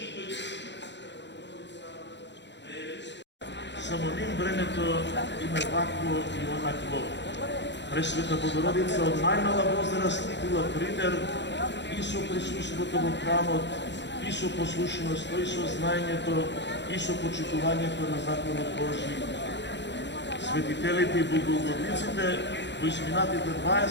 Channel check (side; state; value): right; late; 0.52 ms